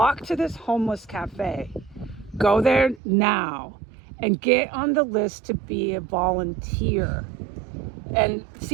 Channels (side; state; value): left; drops out; at 3.0 s